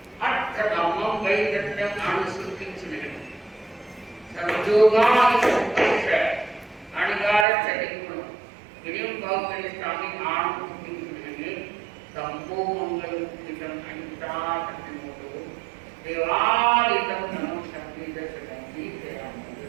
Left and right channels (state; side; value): drops out; left; at 7.5 s